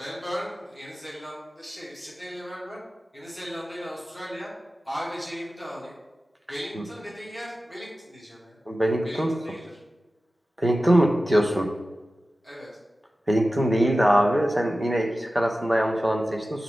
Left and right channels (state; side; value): normal; both; correlation 0.95